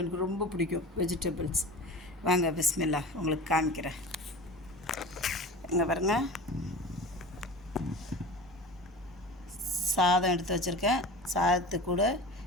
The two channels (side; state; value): both; normal; correlation 0.34